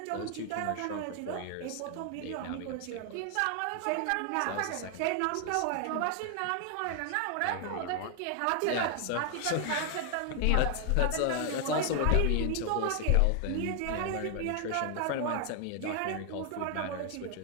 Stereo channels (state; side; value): different; both; correlation 0.00